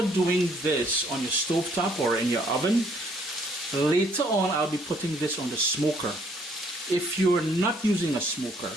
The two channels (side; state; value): both; normal; correlation 0.65